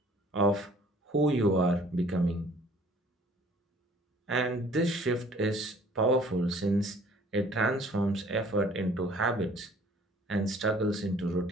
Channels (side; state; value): both; normal; correlation 0.55